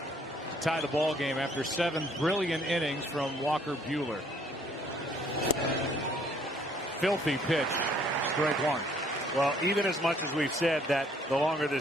to tie the ball game after 7 brilliant innings from Walker Buehler. Filthy pitch. Strike 1. Well, even as much as we've said that the longer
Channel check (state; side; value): normal; both; correlation 0.63